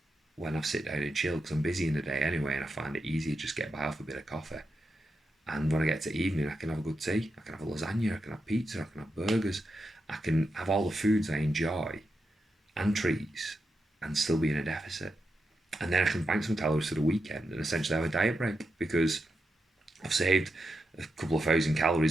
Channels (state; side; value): normal; both; correlation 0.87